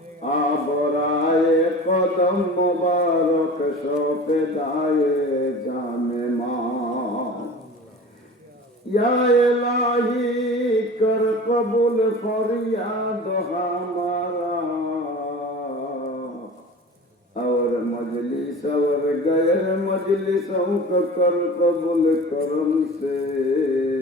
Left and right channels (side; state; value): both; normal; correlation 0.38